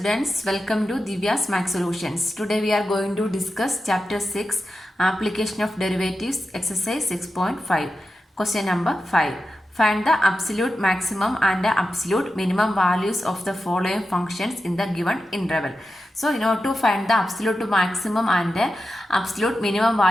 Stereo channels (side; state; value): both; normal; correlation 0.91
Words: welcome to Divya's Math Solutions. Today we are going to discuss Chapter 6, Application of Derivatives, Exercise 6.5. Question number 5. Find the absolute maximum and the absolute minimum values of the following functions in the given interval. So, in order to find the absolute maximum and the absolute minimum